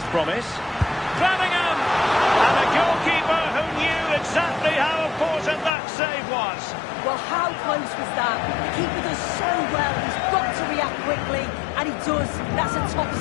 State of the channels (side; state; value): right; drops out; at 5.7 s